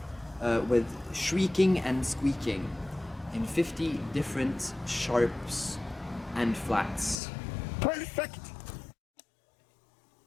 with shrieking and squeaking in 50 different sharps and flats. Perfect!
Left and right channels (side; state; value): right; drops out; at 7.2 s